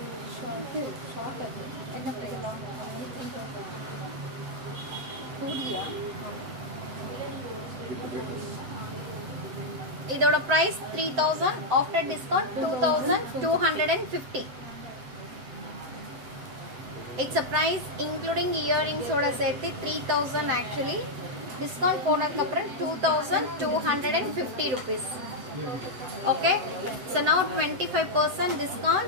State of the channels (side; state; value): left; late; 7.8 ms